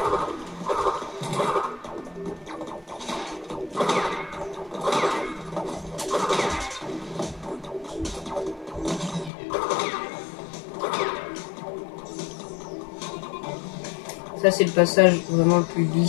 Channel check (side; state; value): right; drops out; at 9.3 s